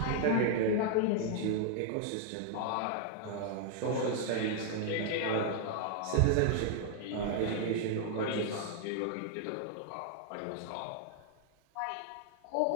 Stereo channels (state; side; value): different; both; correlation 0.00